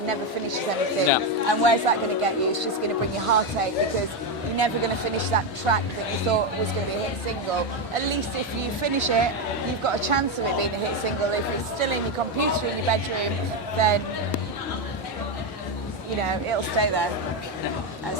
never finishes anything. Yeah. And where's that going to get you? It's just going to bring you heartache, because you're never going to finish that track that you thought was going to be a hit single. At least if you finish it, you've got a chance of it being a hit single. If it's still in your computer in your bedroom, then it'll stay there.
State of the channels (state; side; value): normal; both; correlation 0.08